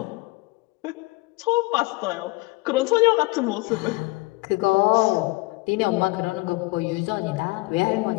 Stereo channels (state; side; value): quieter; right; 25.0 dB